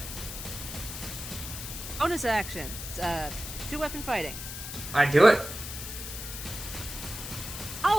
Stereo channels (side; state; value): left; noise; hiss, 8 dB below the sound